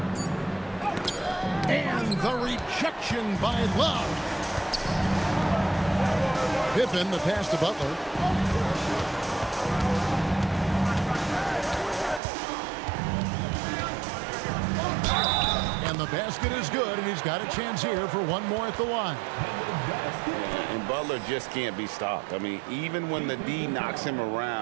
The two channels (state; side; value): drops out; left; at 12.2 s